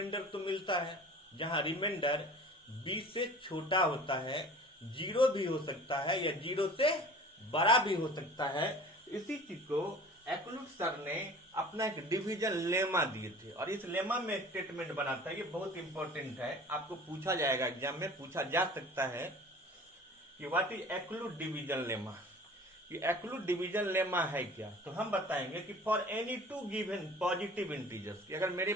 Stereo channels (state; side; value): normal; both; correlation 0.44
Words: तो मिलता है, जहां रिमाइंडर बी से छोटा होता है, 0 भी हो सकता है या 0 से बड़ा भी हो सकता है। इसी चीज को एक्लूट सर ने अपना एक डिवीजन लेमा दिए थे और इस लेमा में स्टेटमेंट बनाता है, ये बहुत इंपॉर्टेंट है, आपको पूछा जाएगा एग्जाम में, पूछा जा सकता है कि व्हाट इज एक्लूट डिवीजन लेमा। कि एक्लूट डिवीजन लेमा है क्या? तो हम बताएंगे कि for any two given positive integers, कि अगर मेरे